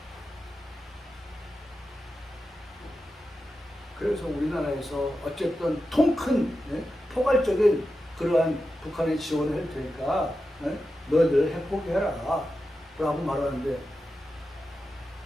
그래서 우리나라에서 어쨌든 통큰 포괄적인 그러한 북한의 지원을 할 테니까 너희들 핵 포기해라 라고 말하는데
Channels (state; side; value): normal; both; correlation 0.90